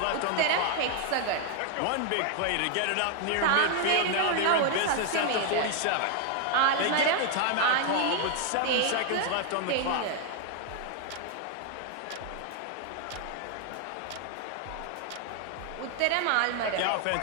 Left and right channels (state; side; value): different; both; correlation 0.00